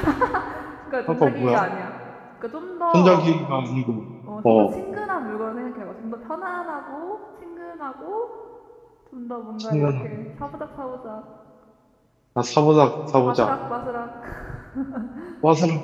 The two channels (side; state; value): both; identical; correlation 1.00